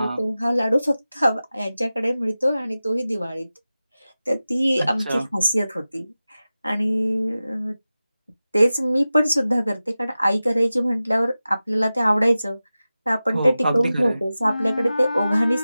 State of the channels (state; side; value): inverted; both; correlation -0.95